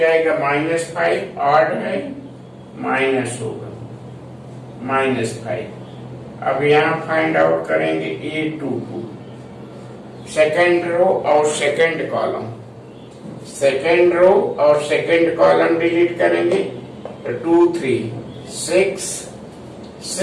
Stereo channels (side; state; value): both; identical; correlation 1.00